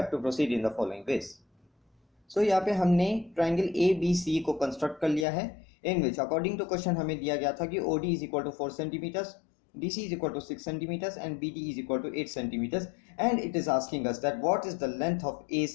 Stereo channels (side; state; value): right; drops out; at 5.2 s